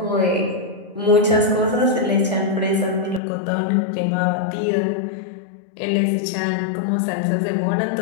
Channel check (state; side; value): drops out; right; at 3.2 s